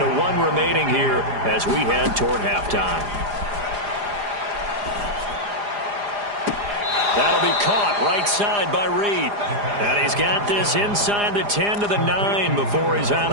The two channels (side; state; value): left; late; 4.9 ms